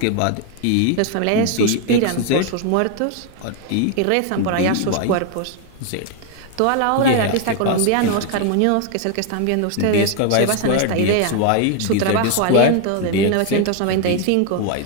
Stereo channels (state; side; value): different; both; correlation 0.01